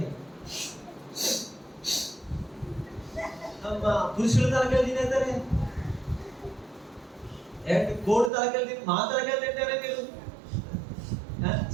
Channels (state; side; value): drops out; left; at 8.3 s